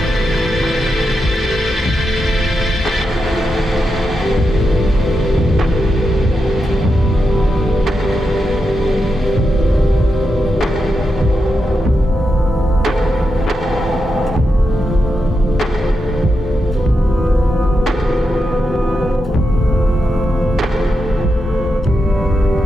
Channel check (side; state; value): both; normal; correlation 0.87